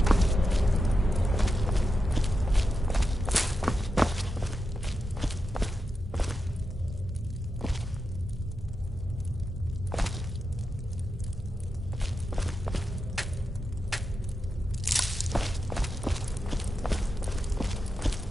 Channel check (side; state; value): both; normal; correlation 0.89